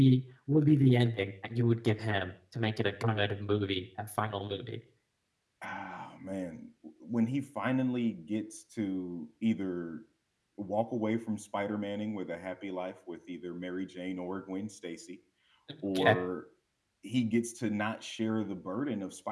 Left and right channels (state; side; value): identical; both; correlation 1.00